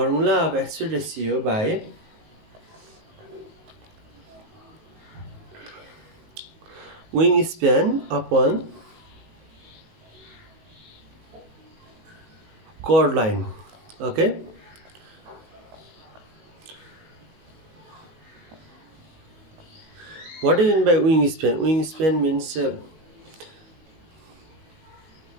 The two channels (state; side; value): late; left; 19 ms